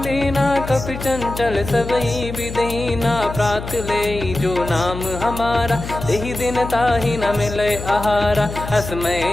कपि चंचल सबई विदहीना प्रात ले जो नाम हमारा तेहि दिन ताहि न मिले आहारा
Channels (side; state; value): left; noise; hum, 9 dB below the sound